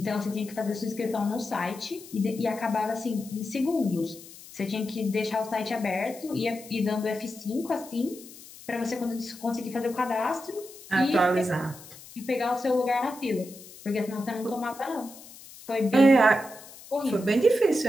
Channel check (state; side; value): noise; left; hiss, 18 dB below the sound